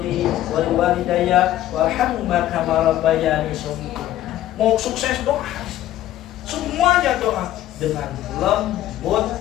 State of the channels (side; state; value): right; quieter; 13.4 dB